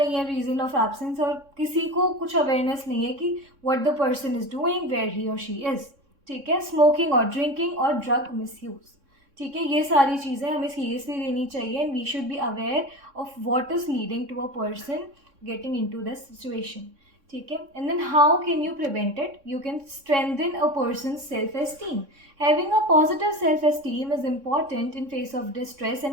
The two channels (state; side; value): late; left; 3.6 ms